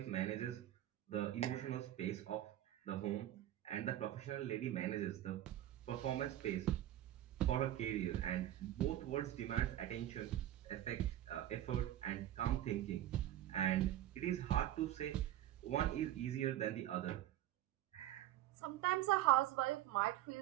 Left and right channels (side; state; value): left; quieter; 13.2 dB